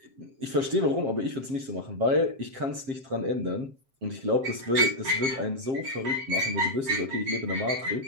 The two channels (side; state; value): left; late; 7.5 ms